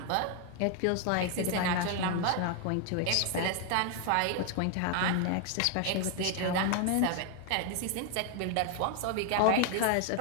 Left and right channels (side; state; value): both; different; correlation 0.00